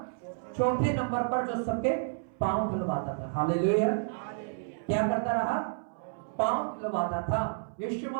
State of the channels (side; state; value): left; silent; 57 dB below the other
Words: चौथे नंबर पर, जो सबके पांव धुलवाता था। हालेलुया। क्या करता रहा? पांव धुलवाता था। यीशु